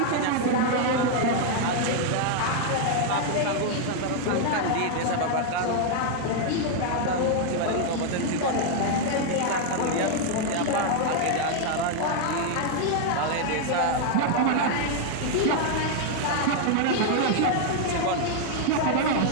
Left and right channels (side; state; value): both; different; correlation 0.00